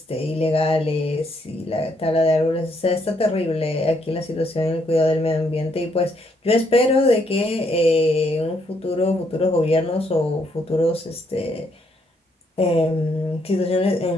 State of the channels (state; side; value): normal; both; correlation 0.73